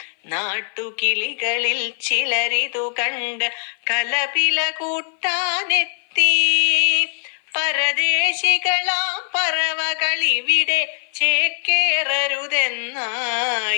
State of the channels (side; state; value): right; silent; 57 dB below the other